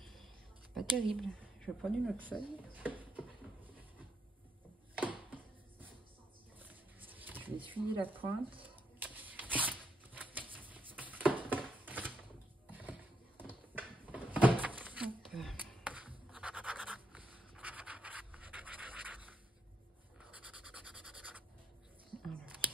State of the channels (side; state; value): both; normal; correlation 0.79